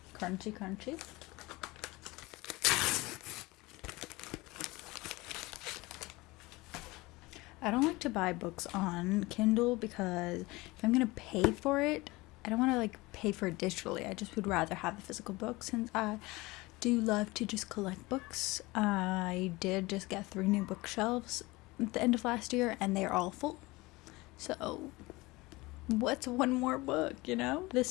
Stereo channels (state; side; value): quieter; right; 21.9 dB